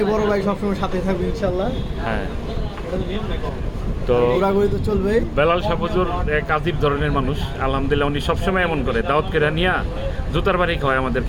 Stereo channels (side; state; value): both; identical; correlation 1.00